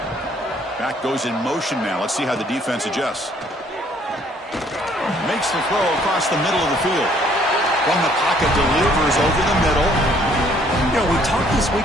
Back goes in motion now. Let's see how the defense adjusts. Makes the throw across the middle of the field. From the pocket, delivers over the middle. You know, we talked this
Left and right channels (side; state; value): both; normal; correlation 0.62